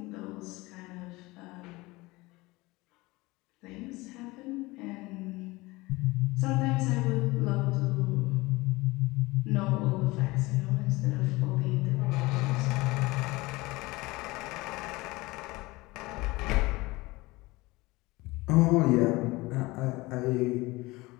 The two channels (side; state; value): right; quieter; 21.7 dB